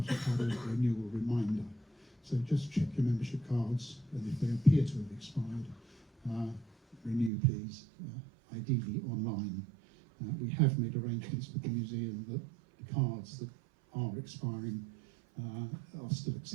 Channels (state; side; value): drops out; left; at 7.3 s